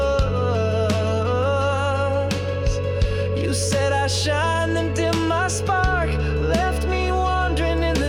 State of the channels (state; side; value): identical; both; correlation 1.00